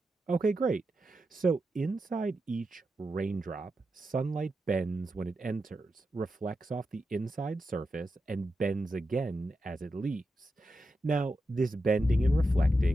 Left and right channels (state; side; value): normal; both; correlation 0.88